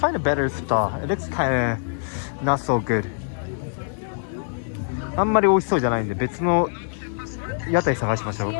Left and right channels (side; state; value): right; silent; digital silence